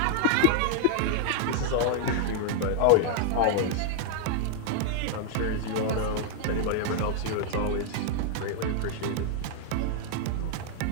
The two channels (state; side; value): different; both; correlation -0.01